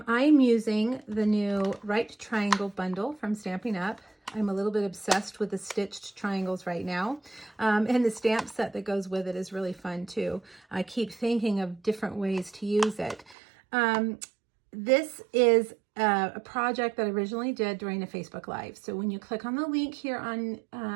using the new Right Triangle bundle from Stampin' Up. I'm a little bit obsessed with the stitched triangles right now, and the stamp set that goes with it is really fun too. I keep thinking of different ways to use it. This is a project that I originally did during a Facebook Live. So when you click on the link here on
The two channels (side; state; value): left; drops out; at 13.4 s